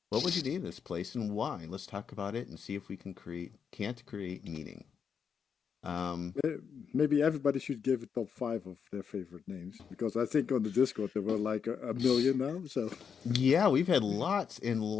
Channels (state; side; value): quieter; right; 6.8 dB